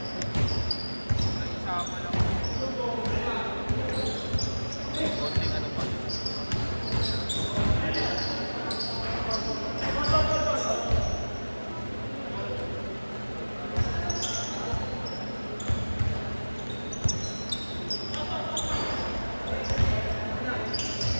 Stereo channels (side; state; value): both; inverted; correlation -1.00